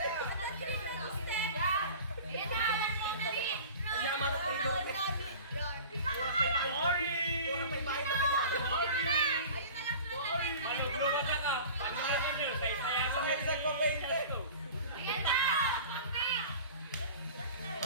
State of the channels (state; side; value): inverted; both; correlation -0.39